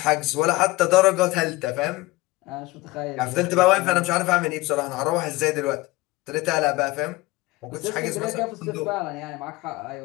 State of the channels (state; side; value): quieter; right; 20.2 dB